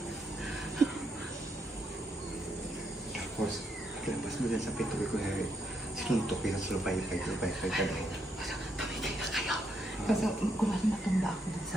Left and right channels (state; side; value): normal; both; correlation 0.77